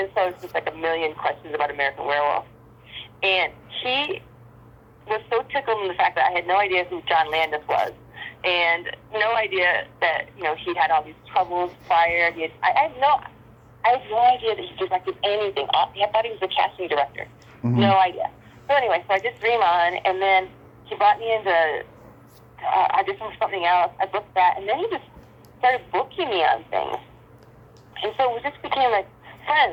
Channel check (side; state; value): both; identical; correlation 1.00